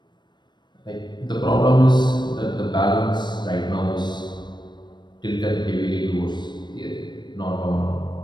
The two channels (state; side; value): late; right; 0.22 ms